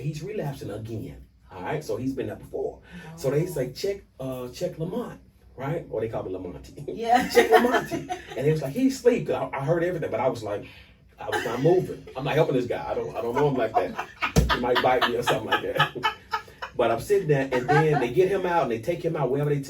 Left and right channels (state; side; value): identical; both; correlation 1.00